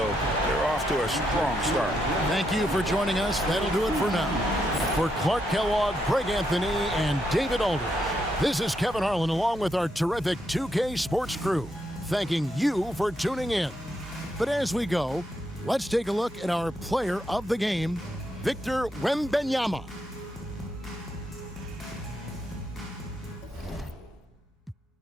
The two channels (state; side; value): normal; both; correlation 0.80